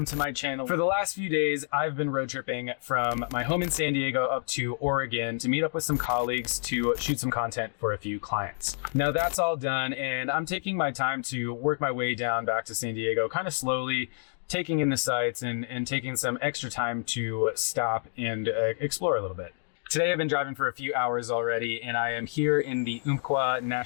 to my channel. For the last few days, I've been road tripping from my home in San Diego up to Oregon to meet up with some colleagues to shoot some content for a few clients. Now that's all done and I'm taking my time to work my way down back to San Diego kind of slowly, taking in the sights and taking some extra time to stop and explore a little bit. Today I've been driving for a few hours already and I am here in the Wacaco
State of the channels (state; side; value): silent; right; digital silence